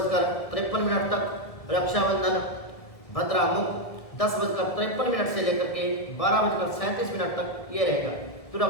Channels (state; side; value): late; right; 1.7 ms